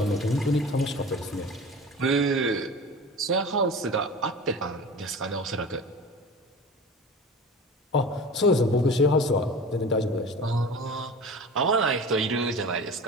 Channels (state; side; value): normal; both; correlation 0.36